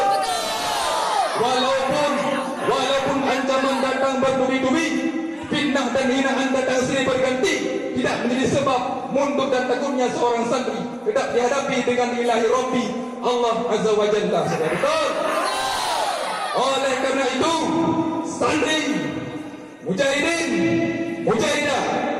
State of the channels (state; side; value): identical; both; correlation 1.00